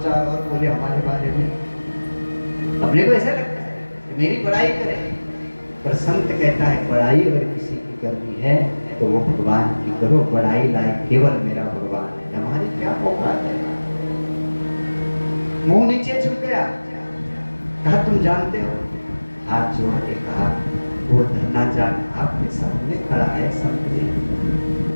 चार और बोले हमारे बारे में, अपने को ऐसा लगता है कि मेरी बड़ाई करे। पर संत कहता है बड़ाई अगर किसी की करनी है तो वो भगवान की करो, बड़ाई लायक केवल मेरा भगवान है, हमारी क्या औकात है। मुंह नीचे झुक गया, कहा तुम जानते हो? हाथ जोड़ के कहा वो धन्ना जाट आपके सामने खड़ा है संत जी।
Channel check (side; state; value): both; inverted; correlation -1.00